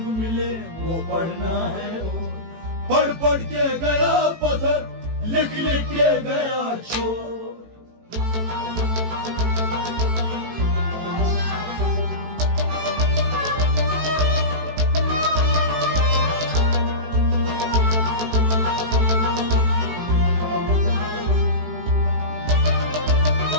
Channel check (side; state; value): left; late; 18 ms